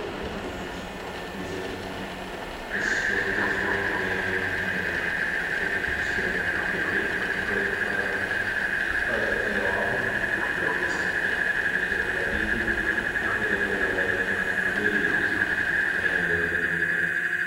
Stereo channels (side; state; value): both; identical; correlation 1.00